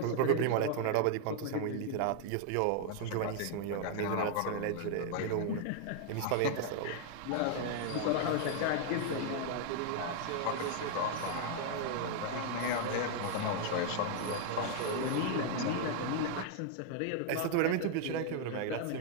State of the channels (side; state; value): both; different; correlation 0.00